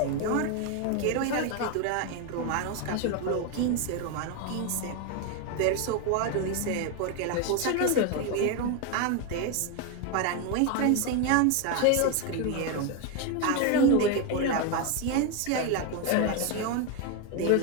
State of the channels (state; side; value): different; both; correlation 0.02